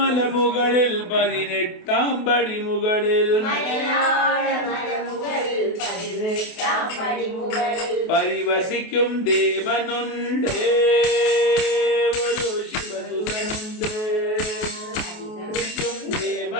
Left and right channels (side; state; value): right; late; 28 ms